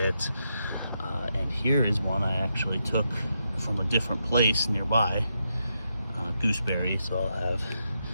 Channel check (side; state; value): both; inverted; correlation -0.83